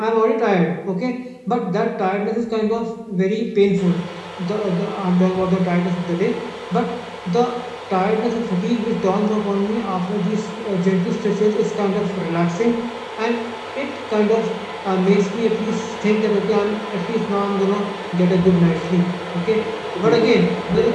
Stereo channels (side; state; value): both; identical; correlation 1.00